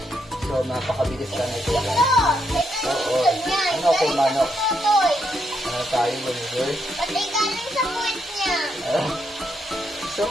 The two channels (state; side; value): normal; both; correlation 0.78